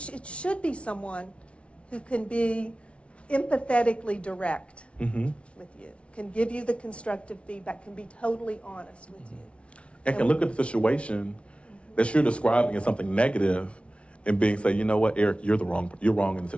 should be someone who can be empathetically direct with you, can give you the constructive feedback, can be totally honest with you. And can look at the situation that you're describing as something negative and say, you know what, Eric, you're wrong in the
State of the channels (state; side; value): late; right; 0.061 ms